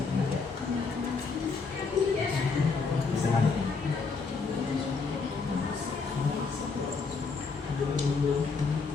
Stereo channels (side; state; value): right; quieter; 4.7 dB